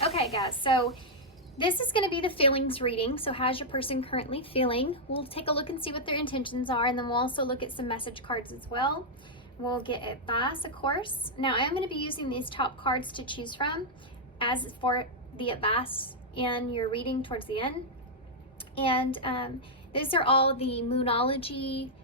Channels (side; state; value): both; normal; correlation -0.05